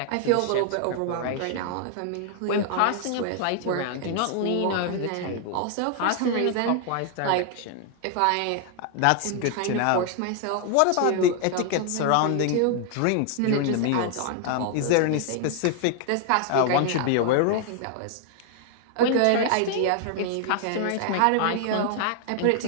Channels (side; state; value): both; different; correlation 0.00